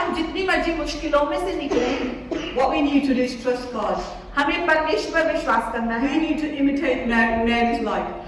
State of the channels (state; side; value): identical; both; correlation 1.00